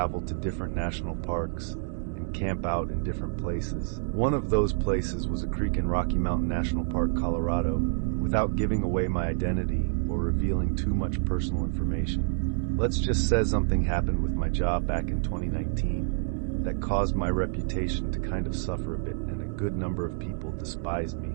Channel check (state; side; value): silent; left; digital silence